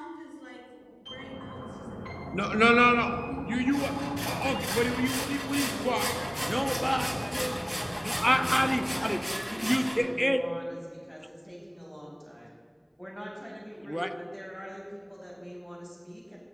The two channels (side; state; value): both; identical; correlation 1.00